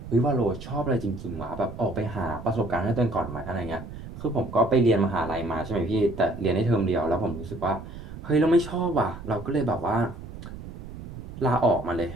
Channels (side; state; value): right; noise; rumble, 12 dB below the sound